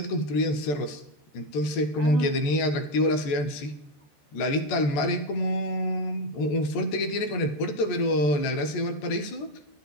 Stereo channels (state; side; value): late; right; 14 ms